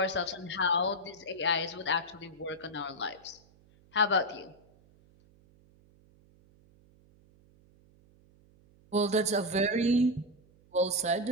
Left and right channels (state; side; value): noise; right; hum, 29 dB below the sound